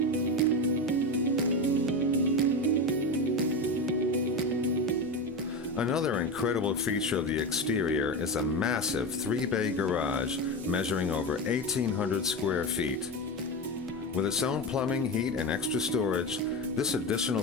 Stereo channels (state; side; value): normal; both; correlation 0.20